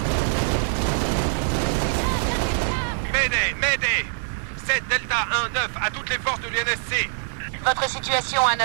Mayday 7 Delta 1-9 à toutes les forces de l'UNSC. Votre situation à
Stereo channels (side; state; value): left; silent; digital silence